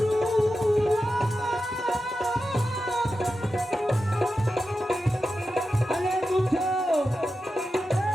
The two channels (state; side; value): normal; both; correlation 0.91